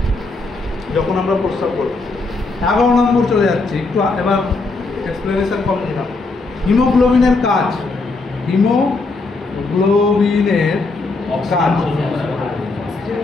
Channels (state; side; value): quieter; right; 3.6 dB